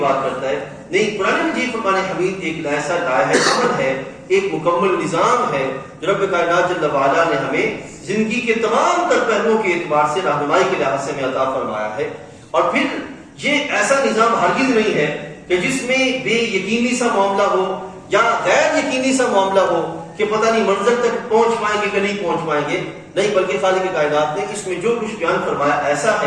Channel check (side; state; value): both; identical; correlation 1.00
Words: کرتا ہے، نہیں، قرآن مجید فرقان حمید ایک ایسا عمل ہے، ایک مکمل نظام ہے جو رب کائنات جل وعلا نے ہمیں زندگی کے تمام تر پہلوؤں کے اعتبار سے رہنمائی کے لحاظ سے ہمیں عطا فرمایا ہے۔ اور پھر یہ ایسا نظام ہرگز نہیں ہے کہ جس میں بے یقینی سا معاملہ ہو یا غیر یقینی سا معاملہ ہو کہ پتہ نہیں منظر تک پہنچ پائیں گے کہ نہیں پہنچ پائیں گے، نہیں، بلکہ خالق کائنات نے اس میں جو کچھ بیان فرمایا ایسا